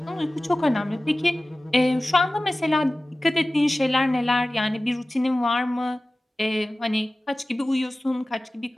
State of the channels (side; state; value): both; normal; correlation 0.97